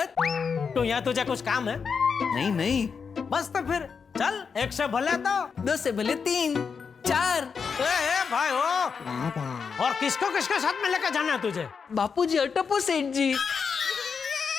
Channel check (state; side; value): quieter; right; 5.9 dB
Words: तो यहाँ तुझे कुछ काम है? नहीं बस तो फिर चल, एक से भले दो से भले 3 4। भाई हो, और किसको किसके साथ में लेकर जाना है तुझे? बापूजी अटपो सेठ जी।